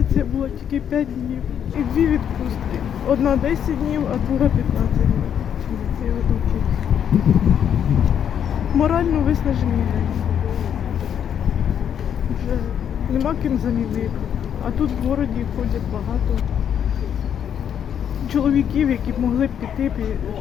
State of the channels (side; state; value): right; quieter; 8.8 dB